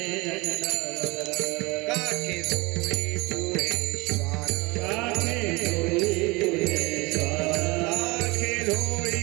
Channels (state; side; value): quieter; left; 24.9 dB